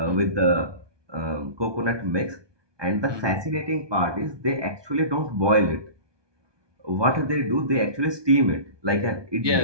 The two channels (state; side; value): late; left; 1.2 ms